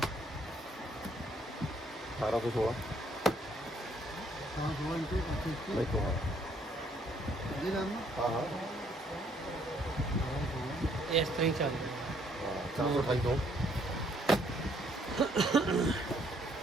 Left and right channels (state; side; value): normal; both; correlation 0.66